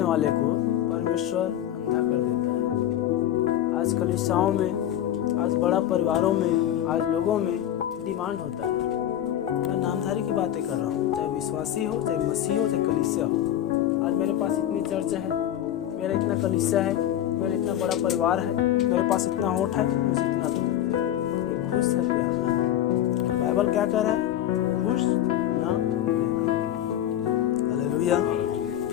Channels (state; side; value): quieter; right; 11.7 dB